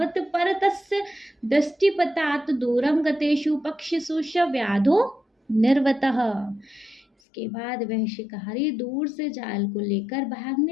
परतस्य दृष्टिपतात् दूरम गतेषु पक्षिषु स व्याधो निर्वतः। इसके बाद वह शिकारी दूर से जाल को लेकर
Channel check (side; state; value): right; drops out; at 7.1 s